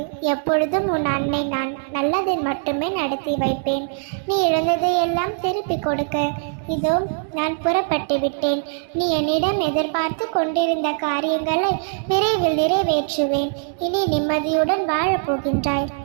எப்பொழுதும் உன் அன்னை நான் நல்லதை மட்டுமே நடத்தி வைப்பேன். நீ இழந்ததை எல்லாம் திருப்பி கொடுக்க இதோ நான் புறப்பட்டு விட்டேன். நீ என்னிடம் எதிர்பார்த்து கொண்டிருந்த காரியங்களை விரைவில் நிறைவேற்றுவேன். இனி நிம்மதியுடன் வாழப்போகின்றாய்.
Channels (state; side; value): silent; left; digital silence